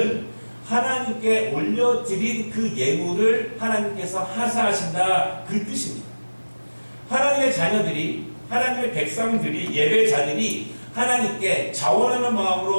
하나님께 올려드린 그 예물을 하나님께서 하사하신다 그 뜻입니다. 하나님의 자녀들이, 하나님의 백성들이, 예배자들이 하나님께 자원하는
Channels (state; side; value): inverted; both; correlation -1.00